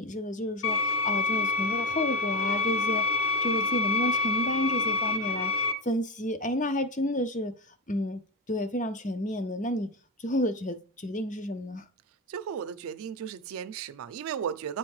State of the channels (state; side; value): normal; both; correlation 0.18